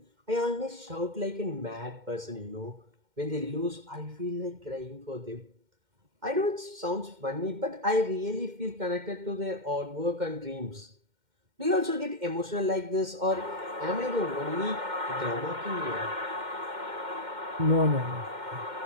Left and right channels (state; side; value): late; left; 2.1 ms